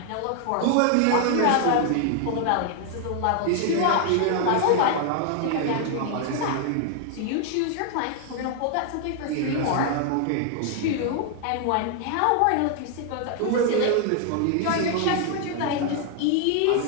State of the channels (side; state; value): both; different; correlation 0.00